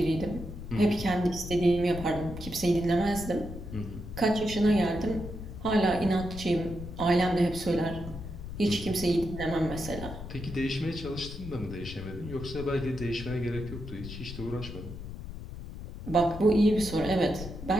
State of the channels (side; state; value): left; noise; rumble, 10 dB below the sound